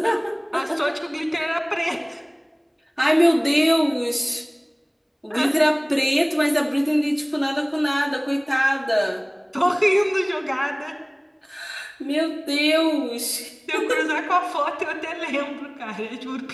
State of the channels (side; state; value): both; identical; correlation 1.00